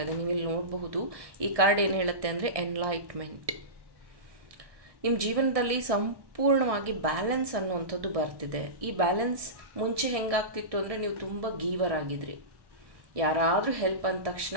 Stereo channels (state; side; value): late; left; 1.6 ms